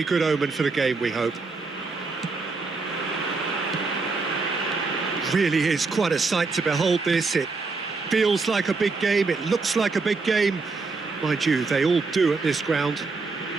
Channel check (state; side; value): quieter; left; 4.1 dB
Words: good omen for the game, we hope. Really is quite a sight to behold this. It feels like a big game, it looks like a big game. Mind you, they all do at this ground.